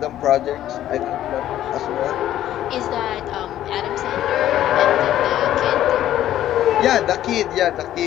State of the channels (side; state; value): right; quieter; 12.4 dB